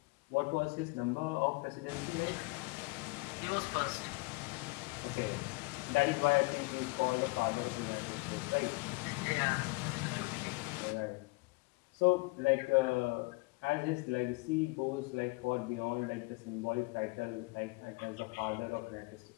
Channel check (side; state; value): right; quieter; 26.7 dB